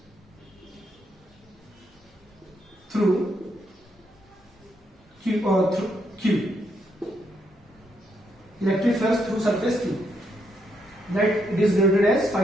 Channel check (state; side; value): normal; both; correlation 0.77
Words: through Q. Electric flux through surface Q, that it is denoted as